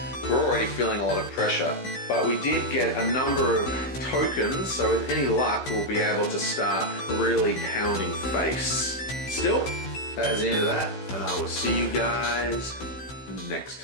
we're already feeling a lot of pressure. But we did get a number of tokens, so with any luck, we'll be able to start really pounding face. Still, that is the end of that, and I will see you guys next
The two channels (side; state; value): right; late; 16 ms